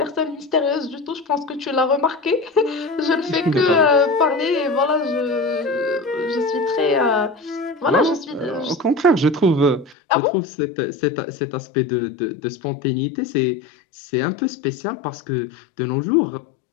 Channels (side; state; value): right; drops out; at 10.0 s